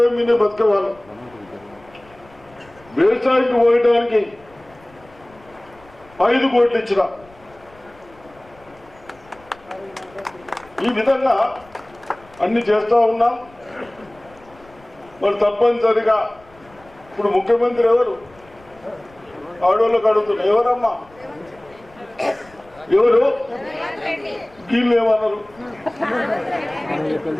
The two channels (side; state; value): left; noise; rumble, 27 dB below the sound